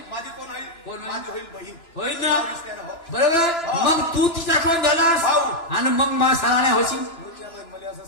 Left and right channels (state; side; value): late; right; 3.0 ms